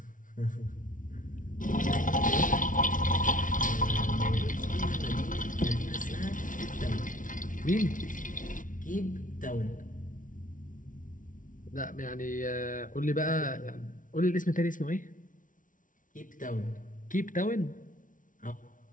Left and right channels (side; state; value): right; late; 0.38 ms